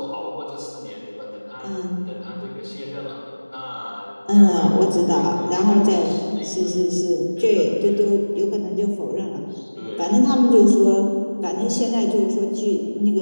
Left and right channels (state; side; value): inverted; both; correlation -1.00